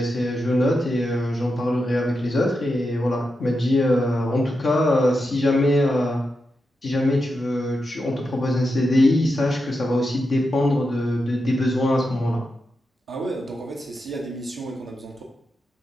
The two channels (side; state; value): both; normal; correlation 0.87